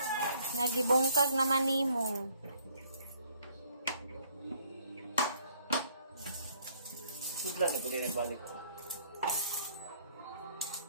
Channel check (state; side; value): inverted; both; correlation -0.64